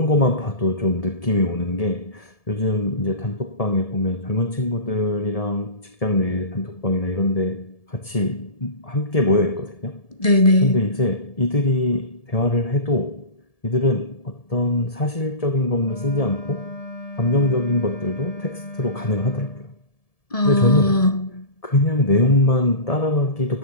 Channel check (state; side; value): late; right; 1.7 ms